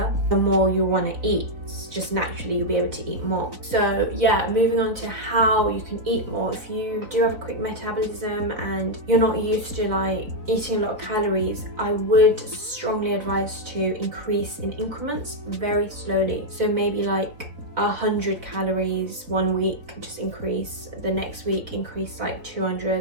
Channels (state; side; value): late; left; 3.8 ms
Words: the more you'll want to eat. Just naturally you'll be able to eat more. So yeah, moving on to how you can eat more. If you do have a quick metabolism and you're not used to like eating a lot of calories, I would strongly advise to increase in increments very slowly. So maybe like 100 calories one week, just increase. The next week increase like